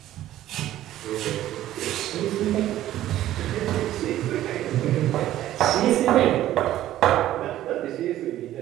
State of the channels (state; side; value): quieter; left; 13.5 dB